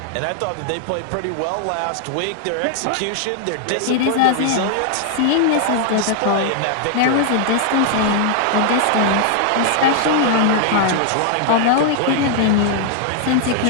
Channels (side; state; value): both; different; correlation 0.00